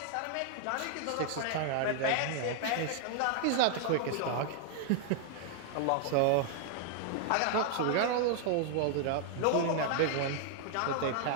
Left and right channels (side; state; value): both; different; correlation 0.00